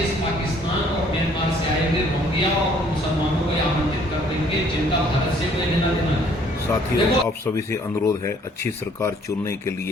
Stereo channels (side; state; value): both; normal; correlation 0.60